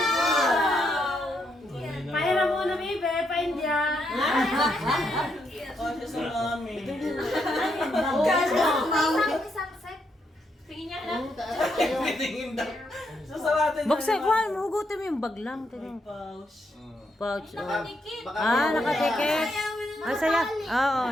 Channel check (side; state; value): both; normal; correlation 0.78